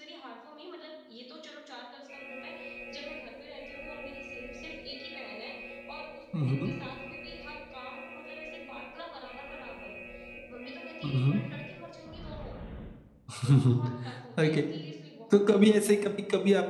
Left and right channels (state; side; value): identical; both; correlation 1.00